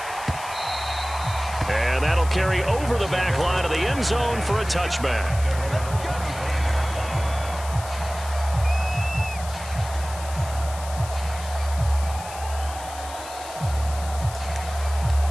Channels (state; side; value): noise; left; hiss, 14 dB below the sound